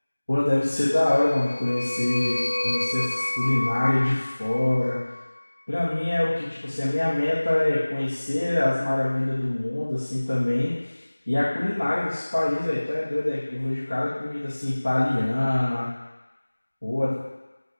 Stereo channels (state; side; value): inverted; both; correlation -1.00